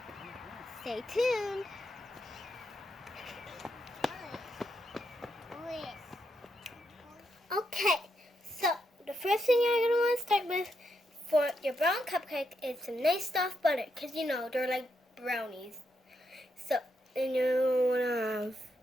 Stay tuned. Okay, so the first thing you're going to want to start with for your brown cupcake is some nice soft butter, because you know they're like brownies. So then you want to have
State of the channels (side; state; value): both; normal; correlation 0.82